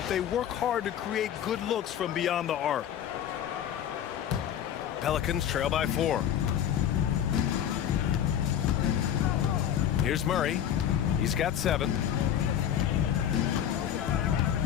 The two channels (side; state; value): right; quieter; 9.9 dB